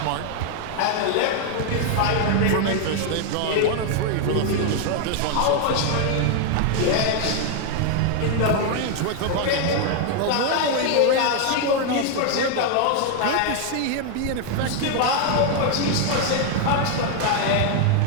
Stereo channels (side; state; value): both; different; correlation 0.00